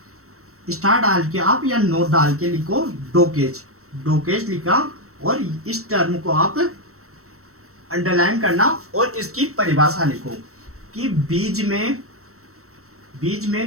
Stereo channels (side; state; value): left; late; 0.64 ms